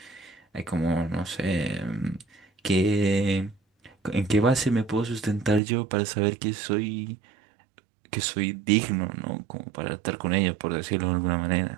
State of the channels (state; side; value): drops out; left; at 5.6 s